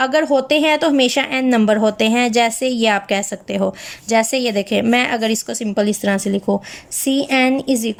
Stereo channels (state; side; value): identical; both; correlation 1.00